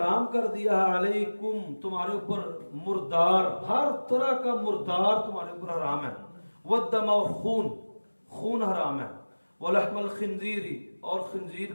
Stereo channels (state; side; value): inverted; both; correlation -1.00